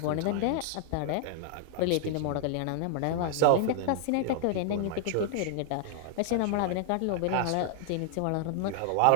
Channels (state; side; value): different; both; correlation 0.00